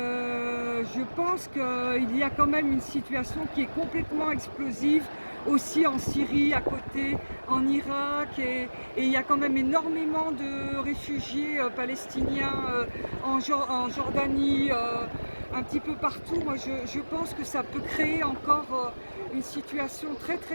pense qu'il y a quand même une situation qui est complètement explosive, aussi en Syrie à côté, en Irak, et il y a quand même énormément de réfugiés palestiniens en Jordanie, un petit peu partout. Moi je pense que ça peut créer encore une situation très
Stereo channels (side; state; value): both; inverted; correlation -1.00